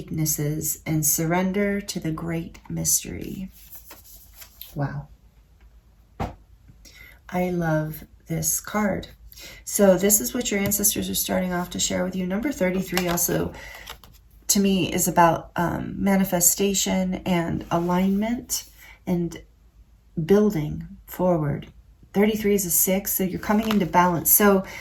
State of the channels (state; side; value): identical; both; correlation 1.00